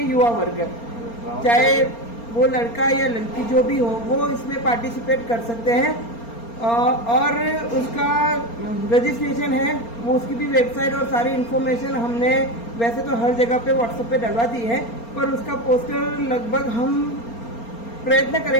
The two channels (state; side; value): late; right; 4.3 ms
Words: युवा वर्ग, चाहे वो लड़का या लड़की जो भी हो, वो इसमें पार्टिसिपेट कर सकते हैं। और उसका रजिस्ट्रेशन है, वो उसकी भी वेबसाइट और सारी इन्फॉर्मेशन हमने वैसे तो हर जगह पे व्हाट्सएप पे डलवा दी है, पर उसका पोस्टर लगभग हम प्रयत्न